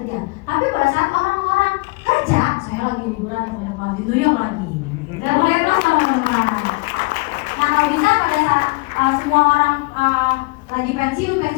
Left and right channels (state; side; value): quieter; right; 26.3 dB